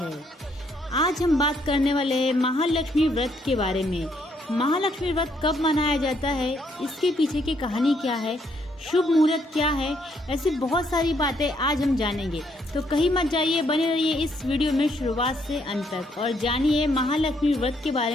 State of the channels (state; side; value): normal; both; correlation 0.71